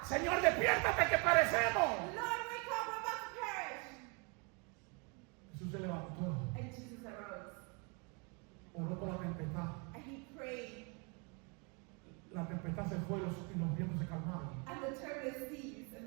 Señor, despiértate que perecemos. Lord, wake up, we're about to perish. Jesús se levantó, And Jesus arose. oró por la tempestad. And he prayed. La tempestad se fue y los vientos se calmaron. And the turbulence ceased and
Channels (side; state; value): left; quieter; 33.4 dB